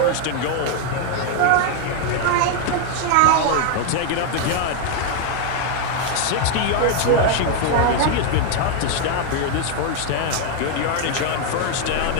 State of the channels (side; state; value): both; different; correlation 0.01